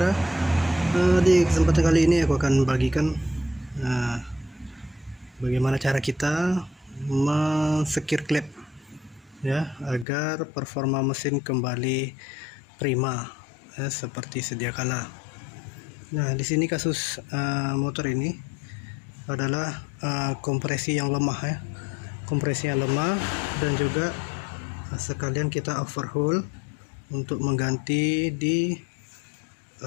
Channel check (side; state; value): right; drops out; at 10.1 s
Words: Di kesempatan kali ini aku akan bagikan bagaimana cara kita mensekir klep ya, agar performa mesin kembali prima seperti sedia kala. Nah, di sini kasus motor ini adalah kompresi yang lemah ya. Kompresi yang lemah dan juga sekalian kita overhaul untuk mengganti di